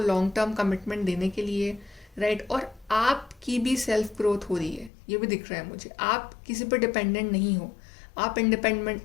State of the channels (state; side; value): drops out; right; at 4.9 s